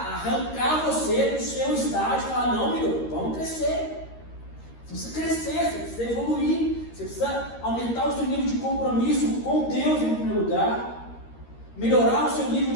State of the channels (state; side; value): late; right; 13 ms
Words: arrancar você do seu estágio e falar, não, meu, vamos crescer. Você precisa crescer, você precisa evoluir, você precisa aumentar o seu nível de compromisso com Deus em primeiro lugar, melhorar o seu nível